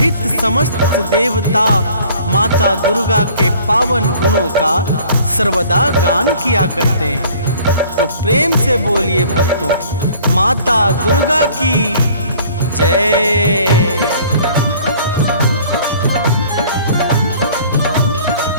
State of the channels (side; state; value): both; inverted; correlation -0.52